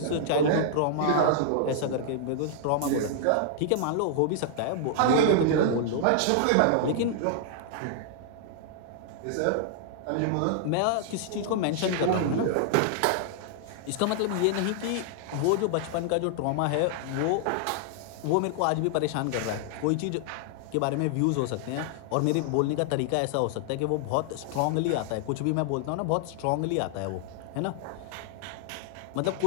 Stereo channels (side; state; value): both; different; correlation -0.01